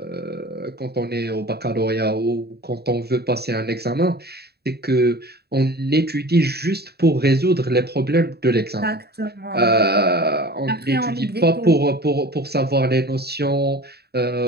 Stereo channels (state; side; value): late; left; 0.47 ms